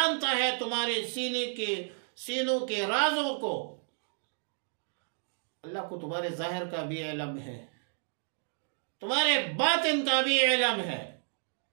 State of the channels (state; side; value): silent; left; digital silence